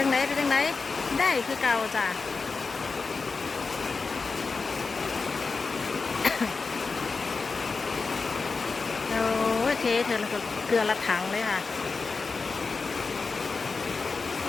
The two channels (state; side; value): quieter; right; 4.4 dB